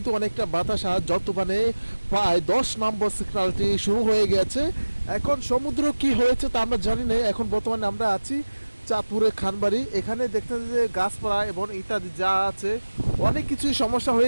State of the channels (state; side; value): inverted; both; correlation -1.00